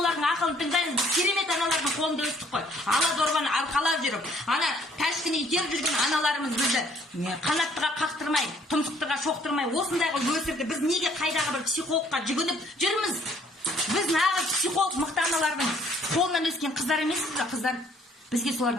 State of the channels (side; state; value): both; normal; correlation 0.62